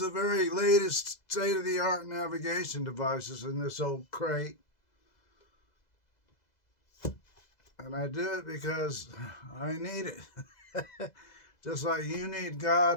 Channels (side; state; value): right; late; 2.0 ms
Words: very latest state-of-the-art navigation devices in this old crate. And I do it because I need it. Just like you need